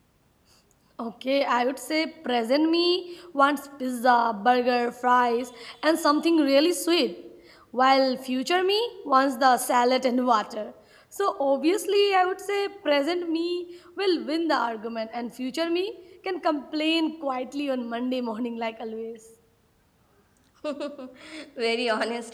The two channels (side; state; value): both; identical; correlation 1.00